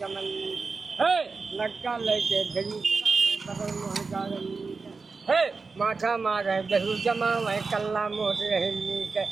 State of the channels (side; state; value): left; quieter; 4.4 dB